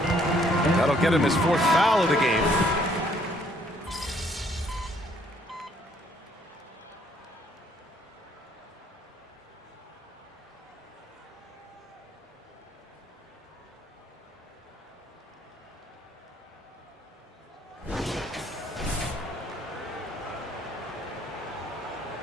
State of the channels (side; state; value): both; normal; correlation 0.65